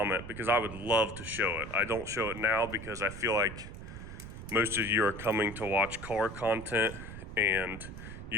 because I would love to show it. I don't show it now because I feel like most of you are coming to watch car content and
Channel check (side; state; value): right; noise; rumble, 11 dB below the sound